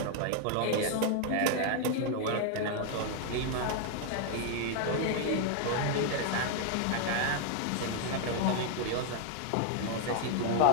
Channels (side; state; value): both; different; correlation 0.00